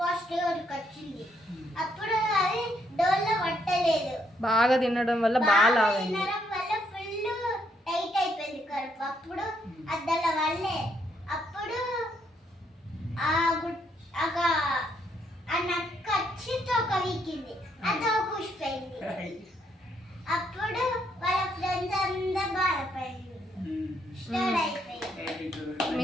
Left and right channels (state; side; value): normal; both; correlation 0.73